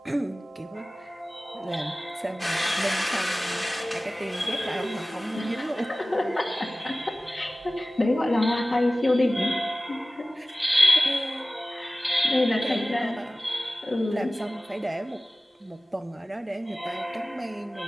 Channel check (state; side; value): normal; both; correlation 0.97